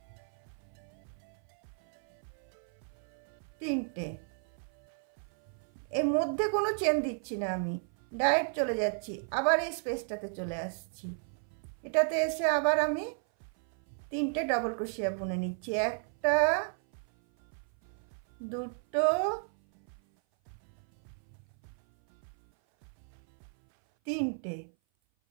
3টে। এর মধ্যে কোনো চেন দিচ্ছি না, আমি ডাইরেক্ট চলে যাচ্ছি। আবার এই স্পেসটাতে চলে আসছি। এটাতে এসে আবার আমি 3টে ডাবল ক্রোশিয়া বুনে নিচ্ছি। 1টা 2টো 3টে।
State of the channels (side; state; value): left; silent; 55 dB below the other